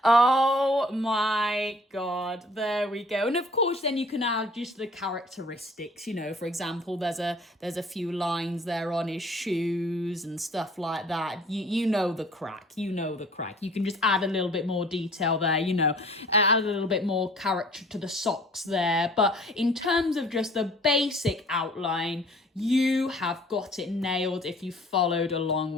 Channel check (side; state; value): both; normal; correlation 0.52